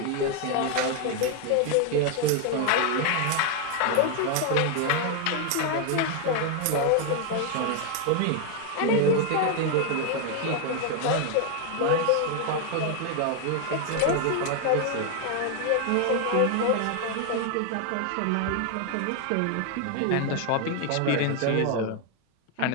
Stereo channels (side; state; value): both; different; correlation 0.01